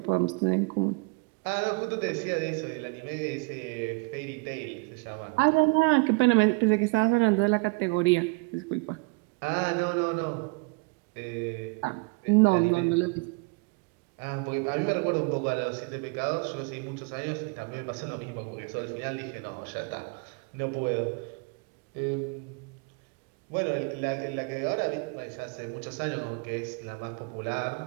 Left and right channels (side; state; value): left; quieter; 29.3 dB